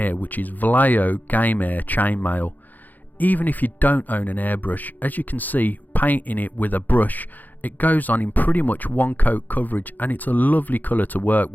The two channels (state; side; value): late; right; 0.084 ms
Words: which is Vallejo Game Air Chainmail. Even if you don't own an airbrush, as you can see, painting it with a brush, it goes on in pretty much one coat coverage and it's a lovely colour to work